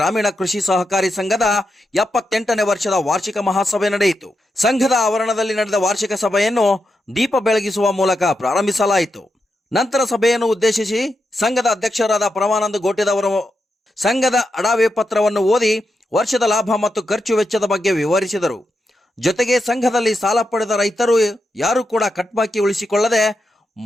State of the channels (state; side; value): normal; both; correlation 0.86